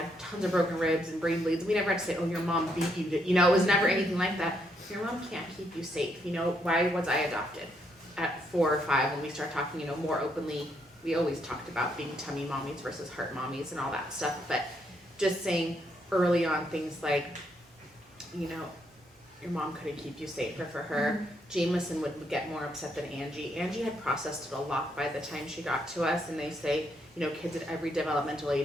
tons of broken ribs and brain bleeds. We never had to say, oh, your mom beat you, it was never anything like that. Your mom can't keep you safe, why was I adopted? At 4 or 5, when we start talking, more openly, we always talked about being tummy mommies versus heart mommies and all that stuff, but just saying early on things like, your mom couldn't keep you safe, or for her, Jameson would get more upset than Angie. Angie had processed it a lot by the time she got to us, and they say, kids at every developmental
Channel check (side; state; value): both; normal; correlation 0.75